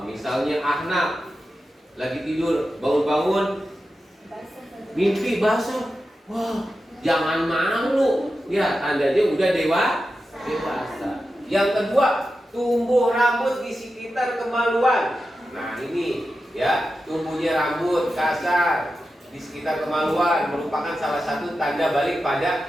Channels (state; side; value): normal; both; correlation 0.91